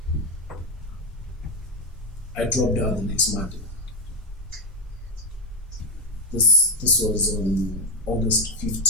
I dropped out the next Monday. This was on August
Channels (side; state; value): both; normal; correlation 0.07